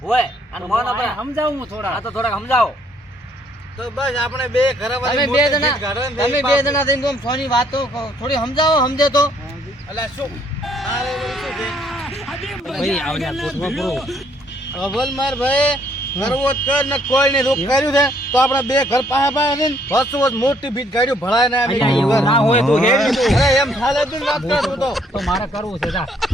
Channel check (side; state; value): both; normal; correlation 0.66